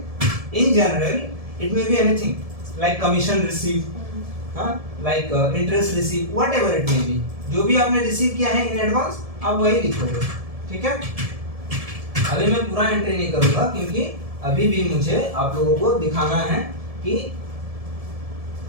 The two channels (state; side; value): late; left; 1.7 ms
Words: in general it may be anything like commission receive, हाँ, like interest receive, whatever it may be, जो भी आपने रिसीव किया है इन एडवांस आप वही लिखोगे, ठीक है। अभी मैं पूरा एंट्री नहीं करूंगा क्योंकि अभी भी मुझे आप लोगों को दिखाना है कि